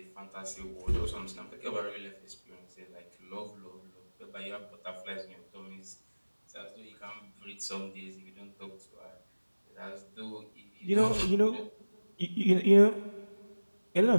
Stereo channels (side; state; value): both; inverted; correlation -1.00